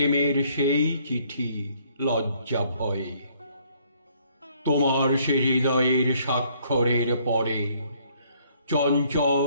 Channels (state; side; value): inverted; both; correlation -0.64